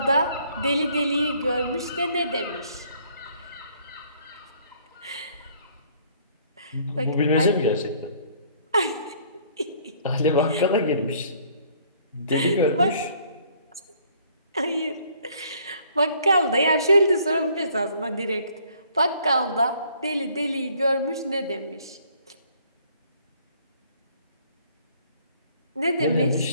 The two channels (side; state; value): both; inverted; correlation -0.61